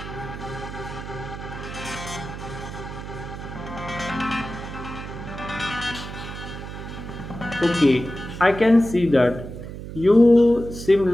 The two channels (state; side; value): noise; right; hum, 10 dB below the sound